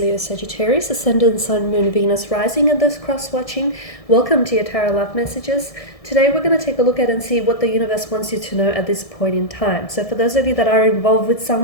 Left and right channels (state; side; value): late; right; 1.6 ms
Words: Sagittarius, Ascendant, Sun, Moon, Venus, Rising, and those cross-watching. Welcome to your Tarot Love Messages. Today we're going to take a look at and see what the universe wants you to know at this point in time. So for those of you that are involved with